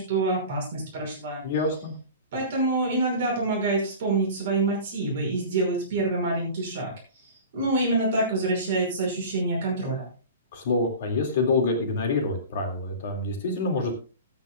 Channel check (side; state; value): both; inverted; correlation -0.36